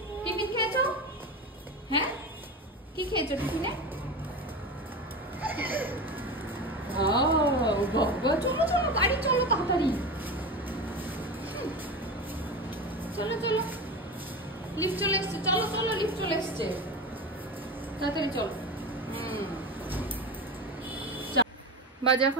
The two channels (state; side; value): normal; both; correlation 0.25